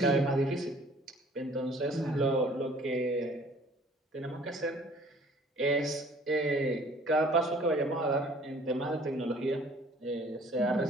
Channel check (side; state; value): both; normal; correlation 0.54